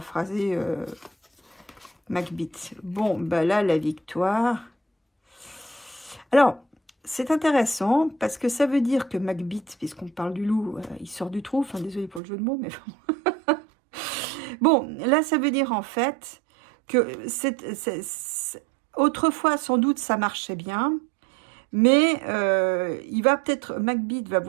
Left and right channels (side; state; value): left; drops out; at 12.2 s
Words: Macbeth. Bon, bah là, la victoire. Alors, c'est intéressant parce que ça veut dire que Macbeth, puisqu'on parle du loup, il sort du trou. Enfin, désolé pour le jeu de mots, mais bon. Bon, là, ça veut dire en fait que autrefois, sans doute, ça marchait bien. Mais Macbeth va